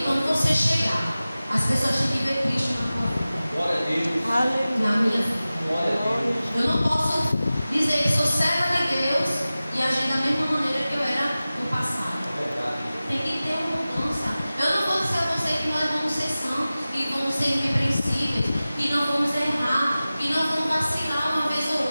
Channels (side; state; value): both; inverted; correlation -0.97